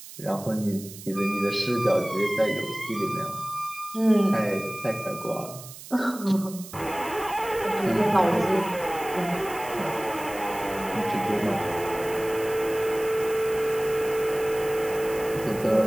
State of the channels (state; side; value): noise; right; hiss, 15 dB below the sound